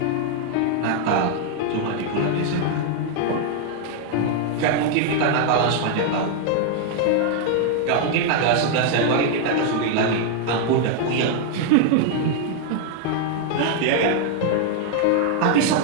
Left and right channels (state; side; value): different; both; correlation 0.00